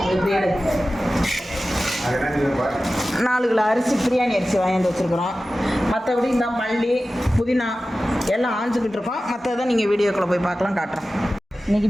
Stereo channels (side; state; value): both; normal; correlation 0.95